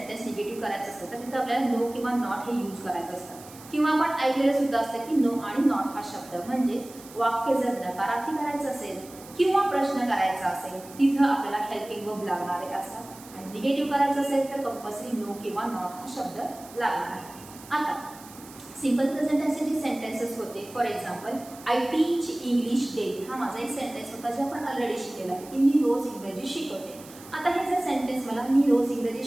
निगेटिव्ह करायचं असतं तर तिथे आपल्याला नो किंवा नॉट हे यूज करायचं असतं, किंवा आपण ऐकलेलं सुद्धा असतं की नो आणि नॉट हा शब्द म्हणजे वाक्य जर नकारार्थी करायचं असेल किंवा प्रश्न करायचा असेल तिथं आपल्याला हेल्पिंग वर्ब लागणारे असतात, आणि निगेटिव्ह करायचं असेल तर कंपल्सरी नो किंवा नॉट हा शब्द लागणार आहे। आता सिंपल प्रेझेंट टेन्सचे जे सेंटेन्सेस होते, for example I teach English daily, हा माझा एक सेंटेन्स होता जे आपण ऑलरेडी शिकलेला आहे की मी रोज इंग्रजी शिकवते। आता हे जर सेंटेन्स मला मी रोज इंग्रजी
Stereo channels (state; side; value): noise; right; hiss, 19 dB below the sound